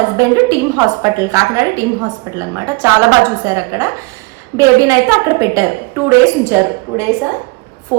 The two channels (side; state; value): left; quieter; 26.6 dB